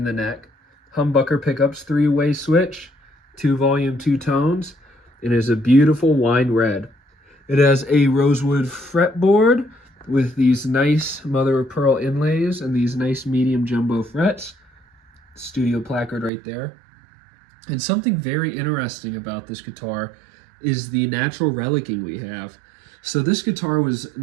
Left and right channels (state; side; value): drops out; left; at 16.3 s